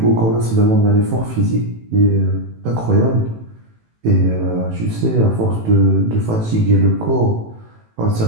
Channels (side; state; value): left; late; 18 ms